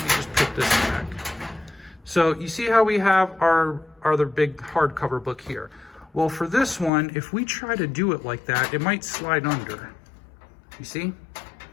me just put this back. So you see how we have our other big hardcover book here. Well, for this one, if we try to do it like that, it might slide under. You see?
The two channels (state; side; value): drops out; right; at 6.9 s